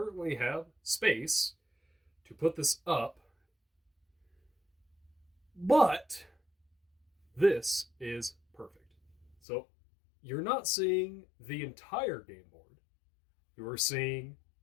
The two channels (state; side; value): drops out; right; at 9.3 s